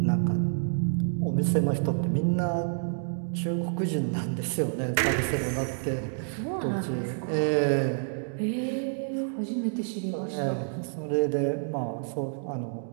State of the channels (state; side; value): silent; left; digital silence